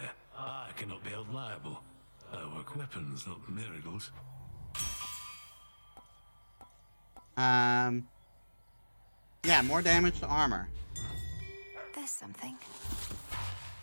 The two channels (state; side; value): inverted; both; correlation -1.00